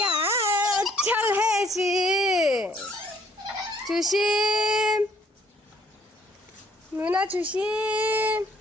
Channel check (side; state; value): both; normal; correlation 0.63